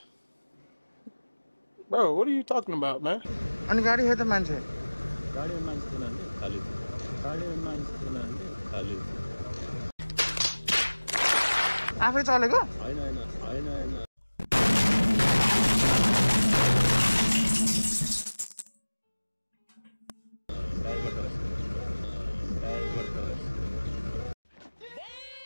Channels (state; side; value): inverted; both; correlation -1.00